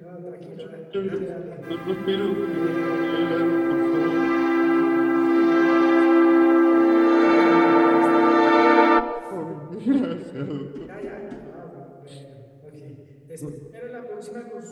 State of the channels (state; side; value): identical; both; correlation 1.00